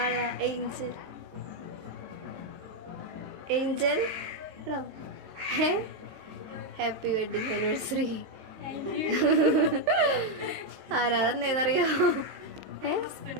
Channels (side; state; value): left; late; 23 ms